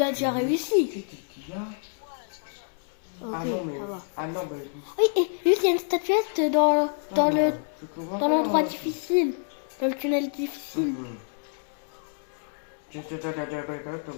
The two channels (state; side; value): silent; right; digital silence